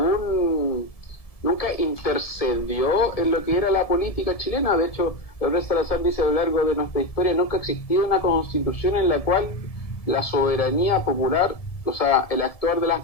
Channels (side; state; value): right; late; 1.7 ms